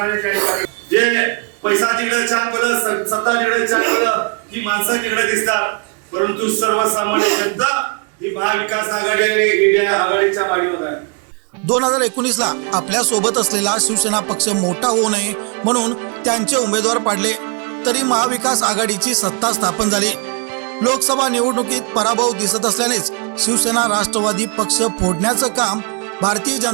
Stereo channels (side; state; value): left; quieter; 35.3 dB